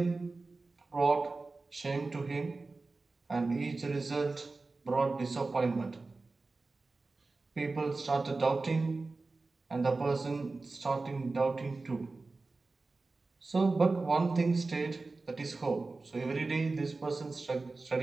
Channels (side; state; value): left; quieter; 3.6 dB